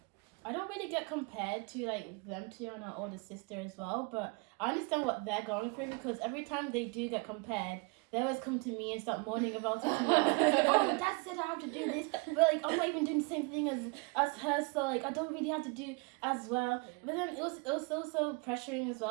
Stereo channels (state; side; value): quieter; left; 29.7 dB